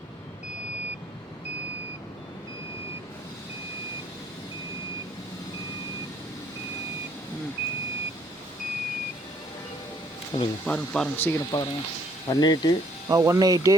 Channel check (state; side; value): normal; both; correlation 0.64